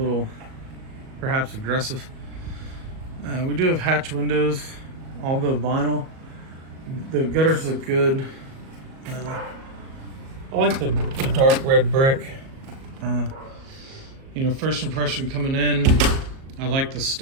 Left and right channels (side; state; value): left; late; 37 ms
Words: perhaps aggressive. We do have hatch windows, all the vinyl. The gutters look good. I like the dark red brick. First impression coming in, I like the